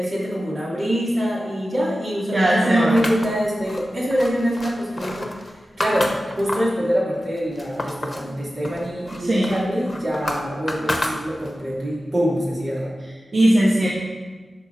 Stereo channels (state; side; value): normal; both; correlation 0.94